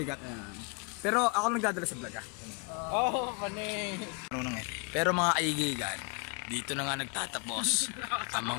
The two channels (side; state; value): right; quieter; 35.0 dB